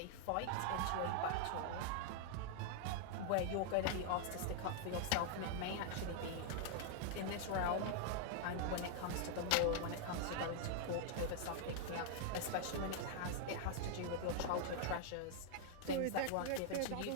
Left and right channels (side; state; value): both; different; correlation -0.01